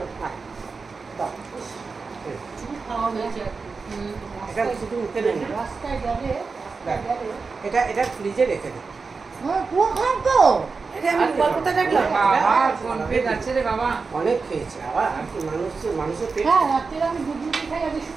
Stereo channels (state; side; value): quieter; left; 4.6 dB